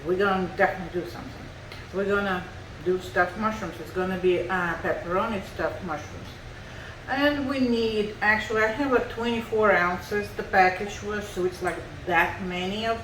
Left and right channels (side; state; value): both; identical; correlation 1.00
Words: we're gonna definitely do something. We're gonna do stuffed mushrooms. It's gonna be pepperoni stuffed mushrooms. And we need, actually I have like 24 ounces the package was, so it's like that many of